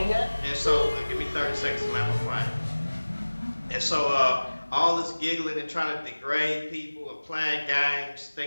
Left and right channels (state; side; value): inverted; both; correlation -1.00